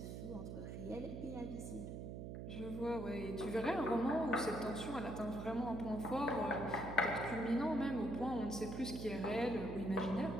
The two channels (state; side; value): noise; right; hum, 6 dB below the sound